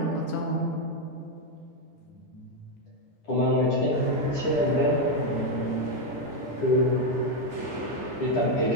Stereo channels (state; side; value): late; right; 9.9 ms